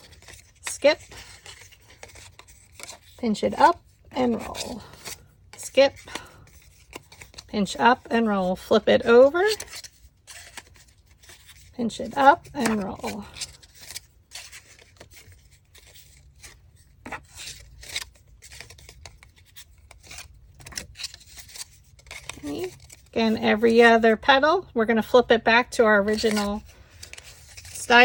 Skip, pinch it up and roll. Skip, pinch up and roll. Flip it over, pinch it up and roll. Okay. Again, every other petal, we're going to flip it back to our original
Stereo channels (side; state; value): both; identical; correlation 1.00